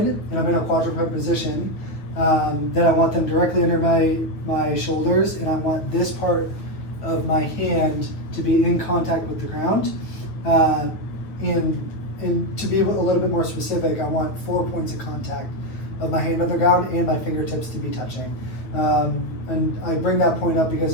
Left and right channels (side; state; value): right; late; 9.2 ms